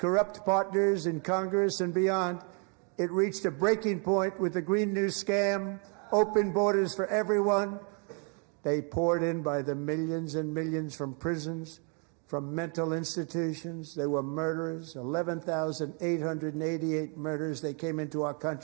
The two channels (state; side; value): quieter; left; 38.4 dB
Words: partners in Congress and beyond, it reached a breaking point with the Green New scam, open borders for everyone. They poured in by the millions and millions from prisons, from mental institutions. They were murderers, 11,888 murders. They came into our